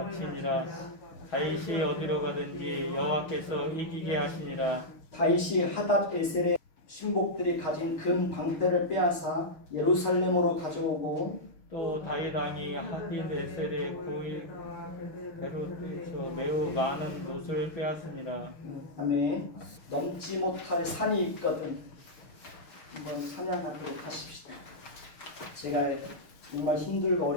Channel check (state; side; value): late; right; 6.5 ms